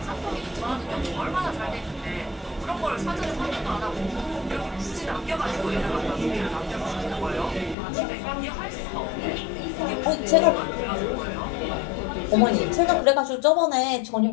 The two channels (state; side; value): drops out; right; at 7.8 s